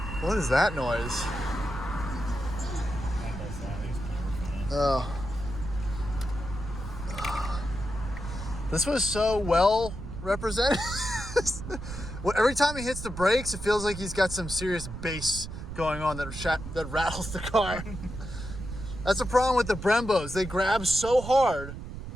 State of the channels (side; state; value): right; noise; rumble, 9 dB below the sound